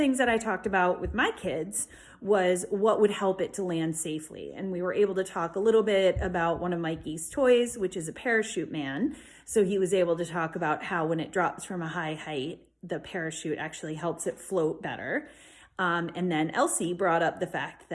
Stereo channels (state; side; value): identical; both; correlation 1.00